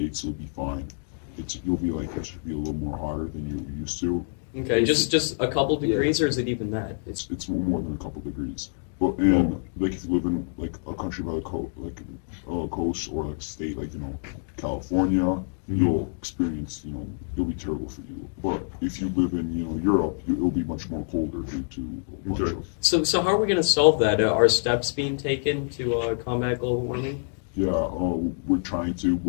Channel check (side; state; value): right; silent; digital silence